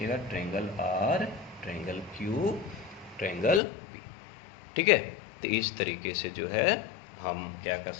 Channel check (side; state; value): right; drops out; at 3.6 s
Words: triangle R, triangle Q, triangle P. ठीक है, तो इस तरीके से जो है हम क्या कर